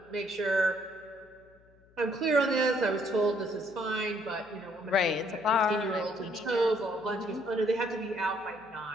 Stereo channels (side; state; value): left; noise; hum, 29 dB below the sound